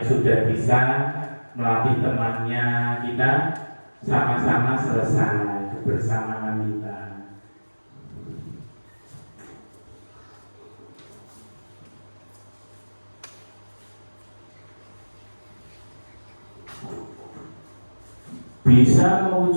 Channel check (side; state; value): both; inverted; correlation -1.00